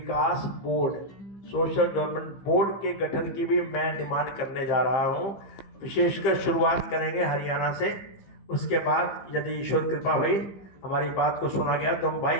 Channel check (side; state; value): right; late; 15 ms